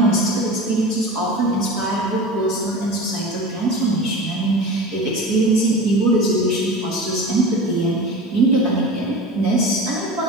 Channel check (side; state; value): both; normal; correlation 0.32